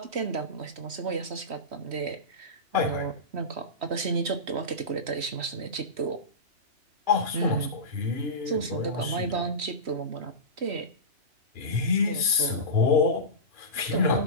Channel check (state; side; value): late; left; 3.1 ms